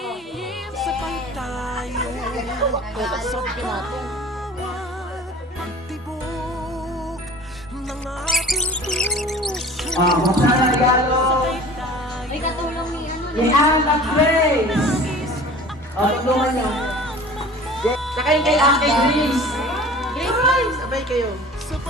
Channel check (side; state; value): both; normal; correlation 0.43